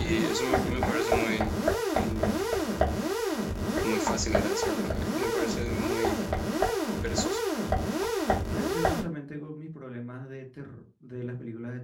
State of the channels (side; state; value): both; identical; correlation 1.00